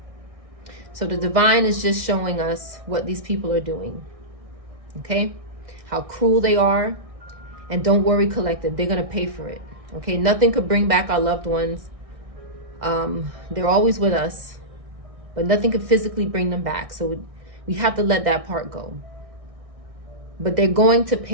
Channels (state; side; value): late; left; 1.6 ms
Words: So the divine is just showing us what these people are doing. Okay? How cruel they are. And don't worry, collective, they're going to pay for it. Okay, nothing could bring back our loved ones. They're always with us, but nothing could physically bring them back. So we have to let that part go. But they're going to